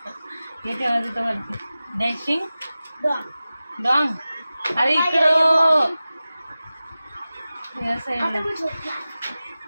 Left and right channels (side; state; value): both; inverted; correlation -0.96